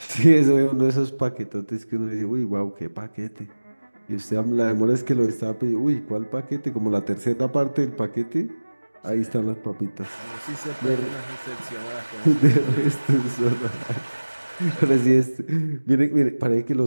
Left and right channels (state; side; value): inverted; both; correlation -1.00